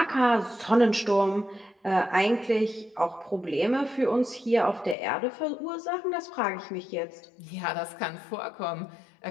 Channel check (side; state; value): right; drops out; at 5.0 s